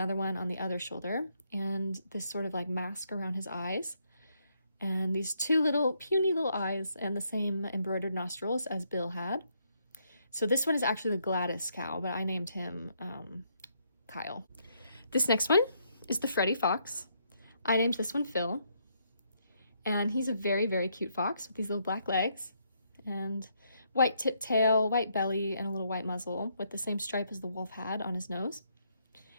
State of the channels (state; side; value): inverted; both; correlation -0.74